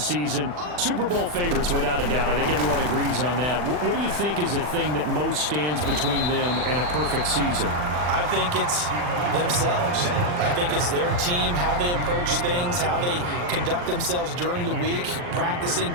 Super Bowl favorites, without a doubt. I think everyone agrees on that. What do you think is the thing that most stands between them and a perfect season? I think it's themselves. I think it's their team, how they approach things, how they conduct themselves during the week, practicing,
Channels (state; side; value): late; left; 40 ms